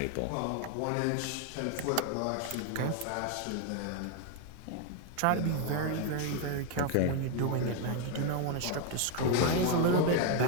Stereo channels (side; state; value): both; different; correlation 0.01